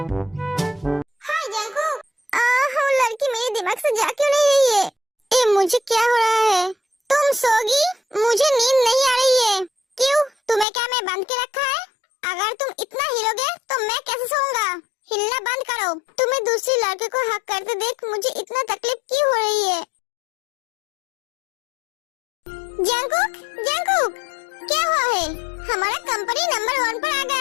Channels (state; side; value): drops out; right; at 10.7 s